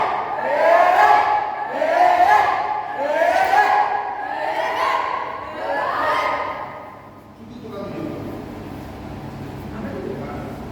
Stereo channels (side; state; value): both; identical; correlation 1.00